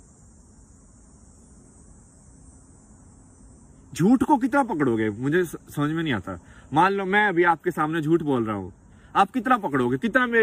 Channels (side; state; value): both; identical; correlation 1.00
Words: झूठ को कितना पकड़ोगे मुझे समझ में नहीं आता। मान लो मैं अभी आपके सामने झूठ बोल रहा हूं, आप कितना पकड़ोगे, कितना